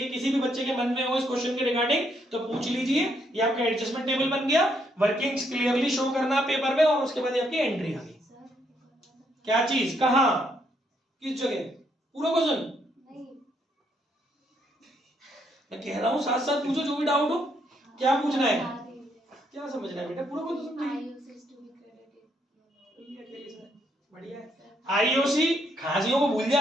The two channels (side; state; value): both; normal; correlation 0.73